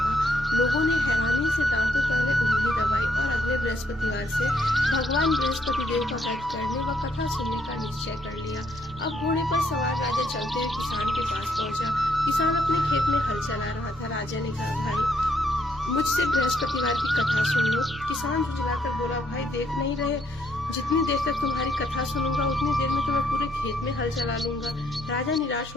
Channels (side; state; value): both; normal; correlation 0.71